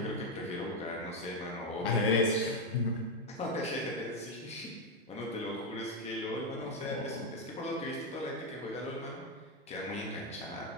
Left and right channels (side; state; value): both; normal; correlation 0.05